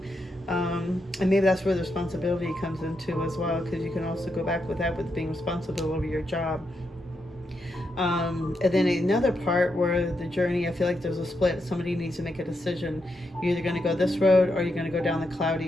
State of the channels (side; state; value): both; normal; correlation 0.83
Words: And maybe that's where the responsibility comes into as well, because you can also go back with that, with being responsible over your job. And then another part where the journey, I feel like there's a split. Somebody needs to make a decision. You're either going to go this road, or you're going to go down the